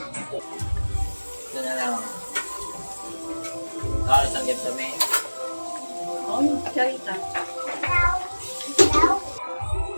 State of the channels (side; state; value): both; inverted; correlation -1.00